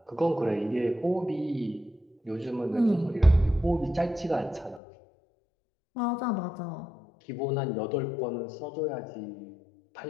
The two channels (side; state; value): right; drops out; at 4.8 s